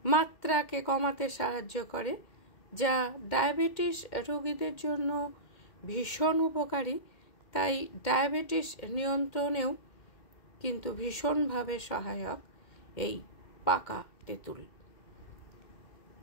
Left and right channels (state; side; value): late; right; 2.1 ms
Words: মাত্রাকে কমাতে সাহায্য করে, যা ডায়াবেটিস রোগীদের জন্য ভীষণ উপকারী। তাই ডায়াবেটিস নিয়ন্ত্রণেও কিন্তু ভীষণভাবে সহায়ক এই পাকা তেঁতুল।